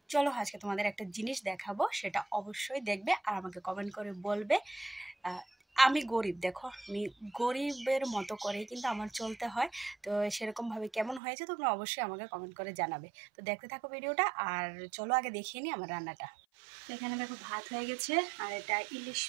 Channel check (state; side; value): drops out; left; at 11.2 s